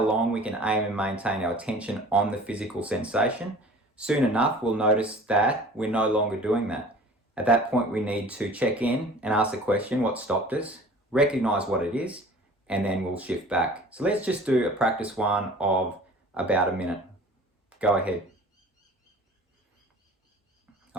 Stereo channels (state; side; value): normal; both; correlation 0.45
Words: we can aim and maintain our attention on the physical sensation. Soon enough, we'll notice that we're no longer doing that. At that point, we need to check in and ask the question, what stopped us, recognize what it is, and then we'll shift back. So let's just do a practice one of about a minute. Go ahead.